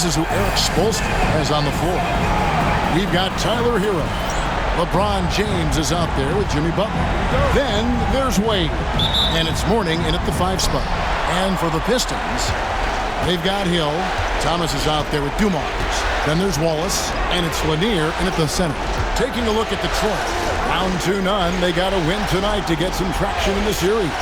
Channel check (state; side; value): identical; both; correlation 1.00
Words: is who Eric Spoelstra has on the floor. We've got Tyler Hero. LeBron James is out there with Jimmy Butler. Then there's Wade. And it's Mourning in at the 5 spot. And for the Pistons, they've got Hill. Thomas is out there with Dumars. Then there's Wallace. And it's Lanier in at the center. Taking a look at Detroit. Down 2-0. They got to win tonight to get some traction in the series.